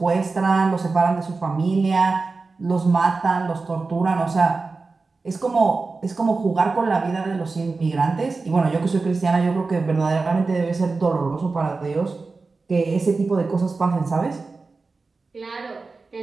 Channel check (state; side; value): quieter; left; 4.0 dB